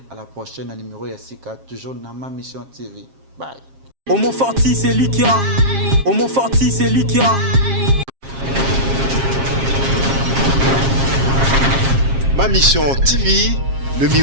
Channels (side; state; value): left; late; 7.4 ms